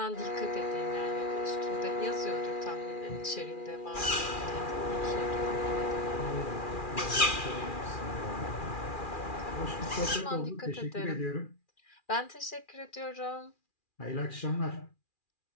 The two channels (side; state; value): right; late; 2.4 ms